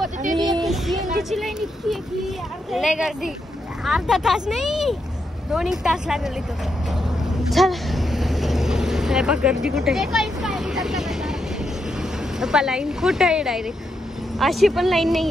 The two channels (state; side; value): normal; both; correlation 0.82